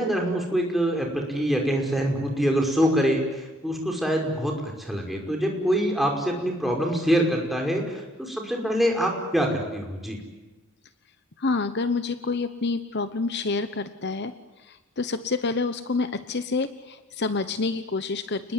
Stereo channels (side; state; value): both; normal; correlation 0.61